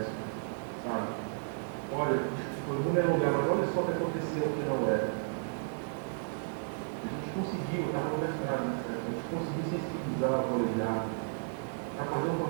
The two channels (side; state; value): left; silent; digital silence